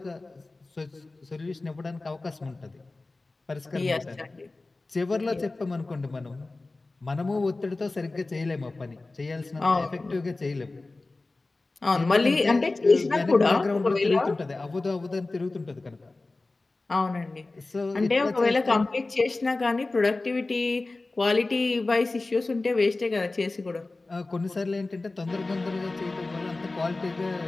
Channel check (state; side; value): quieter; right; 3.2 dB